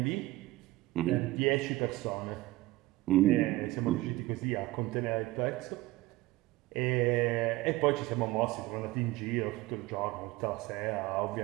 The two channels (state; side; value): quieter; left; 18.6 dB